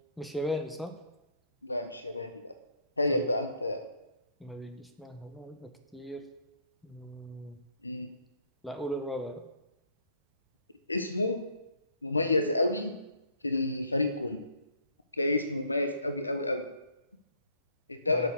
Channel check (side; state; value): both; inverted; correlation -0.62